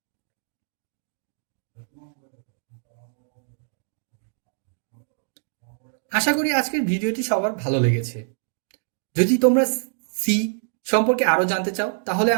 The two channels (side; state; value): left; silent; 62 dB below the other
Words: আশা করি আজকের ভিডিওটি সবার ভালো লেগেছে। যদি তোমরা সি সম্পর্কে আরো জানতে চাও তাহলে